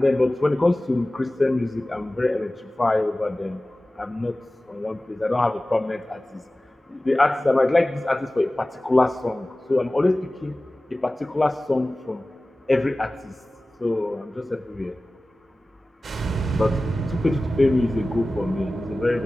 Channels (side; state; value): both; normal; correlation 0.97